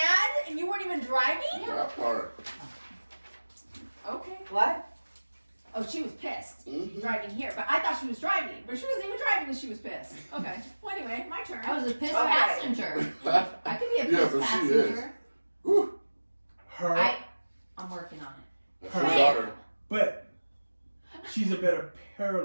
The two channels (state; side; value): inverted; both; correlation -1.00